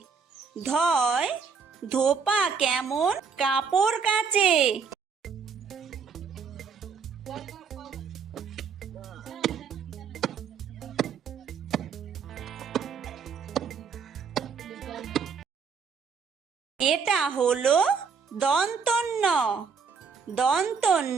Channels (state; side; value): quieter; left; 5.8 dB